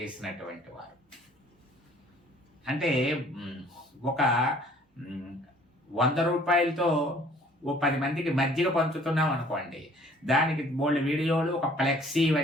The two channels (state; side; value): normal; both; correlation 0.56